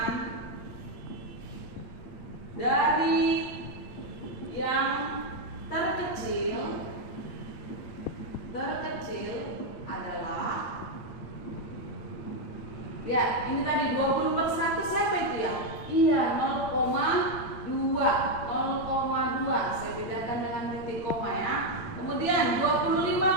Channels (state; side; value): late; right; 8.7 ms